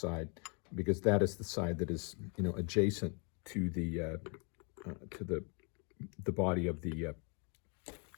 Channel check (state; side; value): quieter; right; 35.3 dB